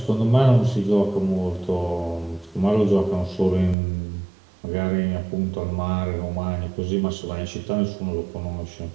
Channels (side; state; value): left; drops out; at 3.8 s